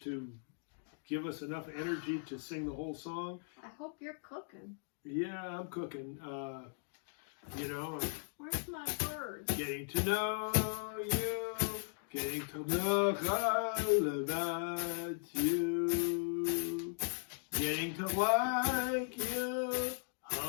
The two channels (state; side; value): silent; right; digital silence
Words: to give us enough energy to sing the whole song. I hope you're cooking. Yeah, I'm cooking. You know. Where's my bird? Getting to know you. Getting to know all about you. Getting to like you.